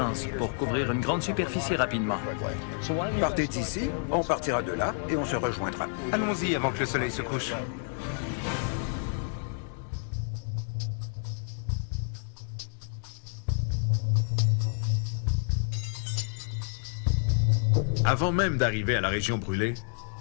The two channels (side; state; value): right; silent; digital silence